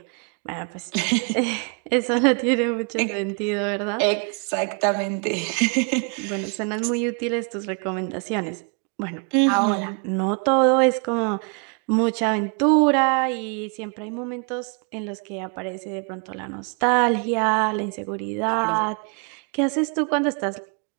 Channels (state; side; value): quieter; left; 37.2 dB